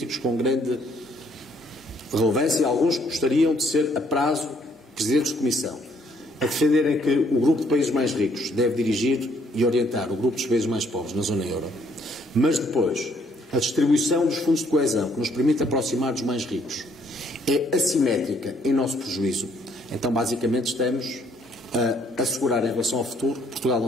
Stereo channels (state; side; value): normal; both; correlation 0.67